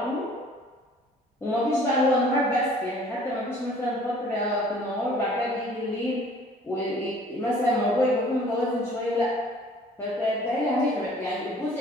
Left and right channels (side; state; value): both; normal; correlation 0.53